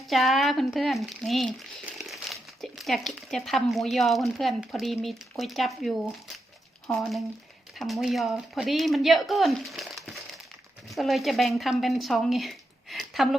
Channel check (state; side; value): normal; both; correlation 0.85